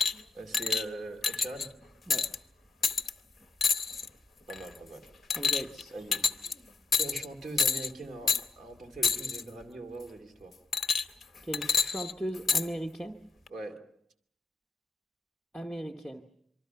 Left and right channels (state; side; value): quieter; right; 4.0 dB